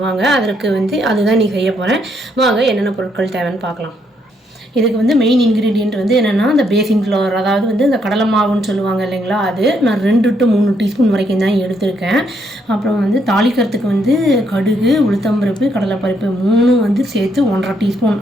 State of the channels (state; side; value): normal; both; correlation 0.74